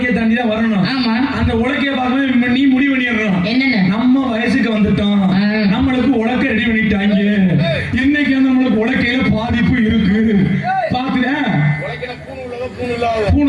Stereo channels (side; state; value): both; identical; correlation 1.00